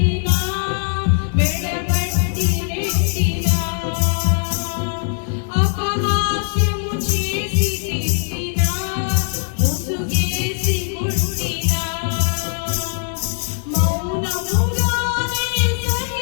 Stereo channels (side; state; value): right; silent; digital silence